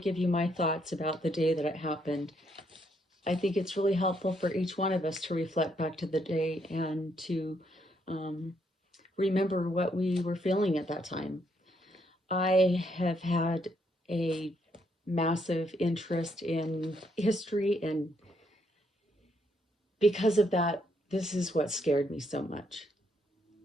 you my thoughts about the day that it happened. I think it's really helpful for each one of us to reflect back to the day and to um, remember what we were feeling at that time. I have had a massive interest in history, and because of that, this is what scared me so much.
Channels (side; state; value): both; normal; correlation 0.74